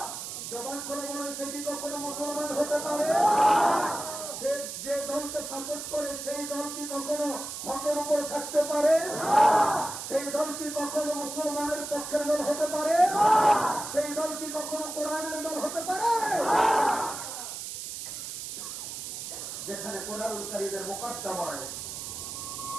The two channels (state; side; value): noise; right; hiss, 7 dB below the sound